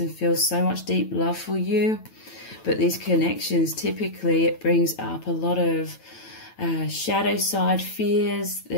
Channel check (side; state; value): right; late; 9.0 ms